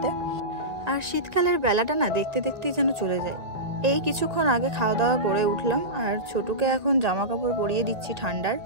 আর শীতকালের বেলাটা না দেখতে দেখতেই যেন চলে যায়। এই কিছুক্ষণ আগে খাওয়া দাওয়া করে উঠলাম, আর ছোটুকে এখন জামা কাপড় পরিয়ে দিচ্ছি ঠান্ডার।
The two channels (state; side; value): late; left; 1.9 ms